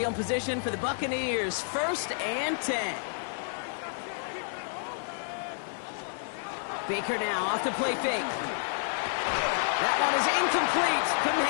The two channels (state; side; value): silent; right; 58 dB below the other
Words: position for the Buccaneers. 1st and 10. Baker now off the play fake. That one is incomplete. Couldn't